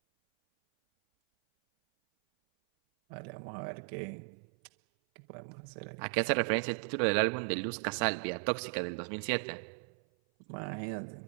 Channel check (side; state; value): left; silent; 54 dB below the other